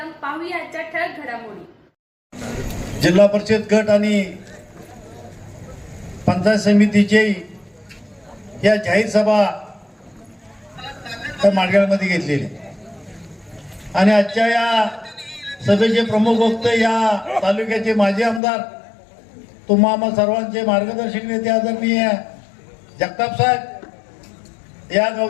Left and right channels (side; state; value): right; drops out; at 18.4 s